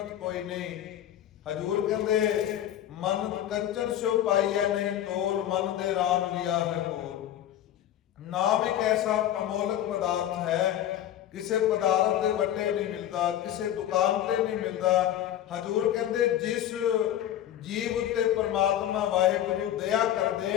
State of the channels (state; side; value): quieter; right; 11.7 dB